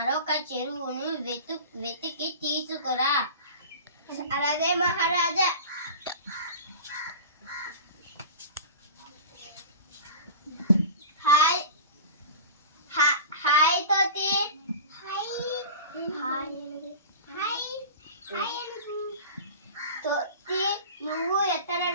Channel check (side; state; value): both; inverted; correlation -0.34